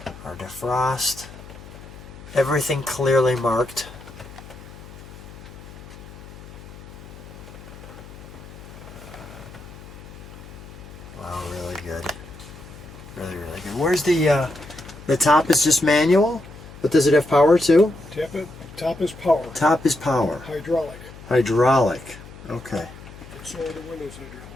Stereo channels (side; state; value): left; noise; hum, 17 dB below the sound